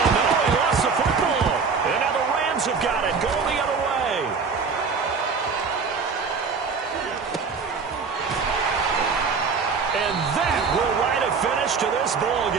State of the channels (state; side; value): quieter; left; 5.2 dB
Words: no, he lost the football. And now the Rams have got it, going the other way. And that will write a finish to this ball